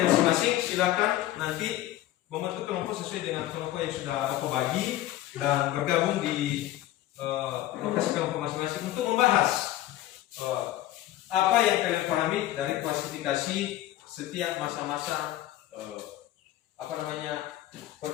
masing-masing. Silakan nanti membentuk kelompok sesuai dengan kelompok yang sudah Bapak bagi dan bergabung di lokasi kelompok masing-masing untuk membahas apa yang kalian pahami dari klasifikasi setiap masa-masa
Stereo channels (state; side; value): quieter; right; 14.4 dB